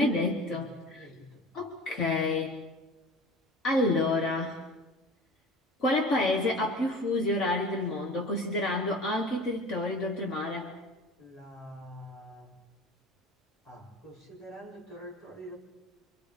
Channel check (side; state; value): both; normal; correlation 0.38